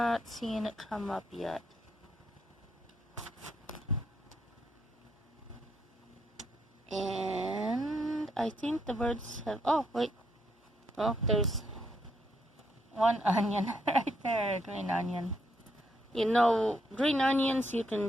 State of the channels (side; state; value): both; normal; correlation 0.76